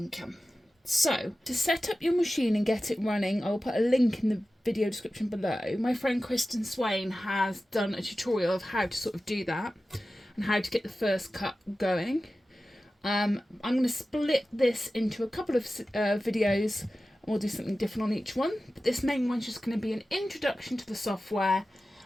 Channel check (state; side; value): normal; both; correlation 0.95